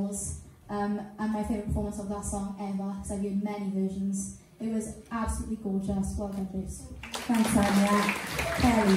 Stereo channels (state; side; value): identical; both; correlation 1.00